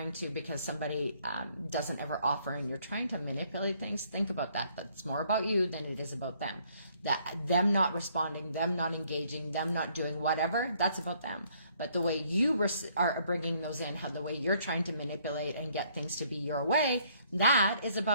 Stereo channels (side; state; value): both; inverted; correlation -0.66